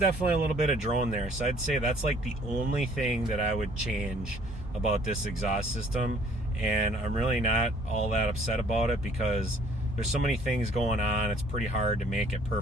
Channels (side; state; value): both; normal; correlation 0.58